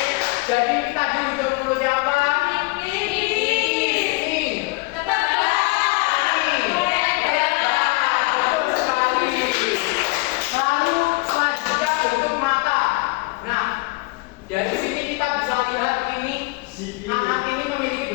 Jadi tadi bentuk mulut yang apa? Dari sini kita bisa lihat ini anak ini memiliki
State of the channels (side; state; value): right; quieter; 25.7 dB